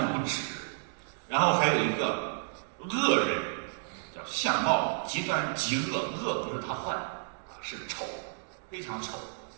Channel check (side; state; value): left; silent; digital silence